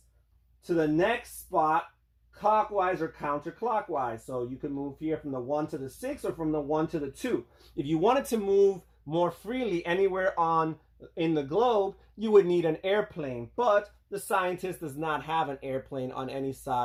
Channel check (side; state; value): both; identical; correlation 1.00